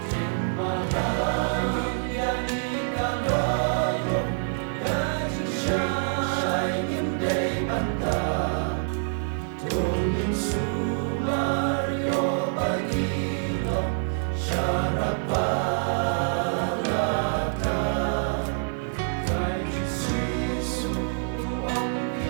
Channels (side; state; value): left; silent; 61 dB below the other